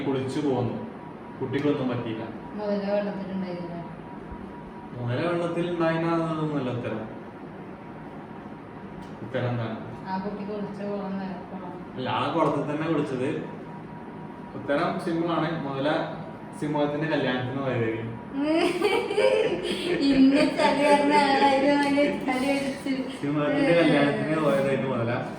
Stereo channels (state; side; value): identical; both; correlation 1.00